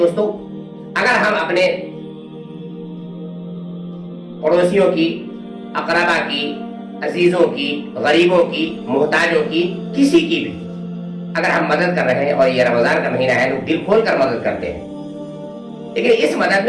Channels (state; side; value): identical; both; correlation 1.00